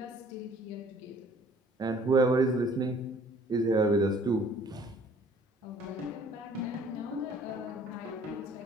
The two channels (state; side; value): normal; both; correlation 0.55